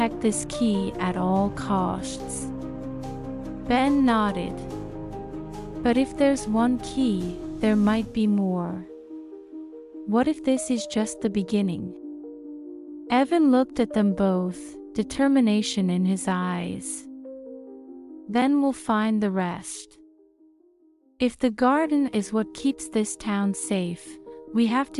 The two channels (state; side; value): identical; both; correlation 1.00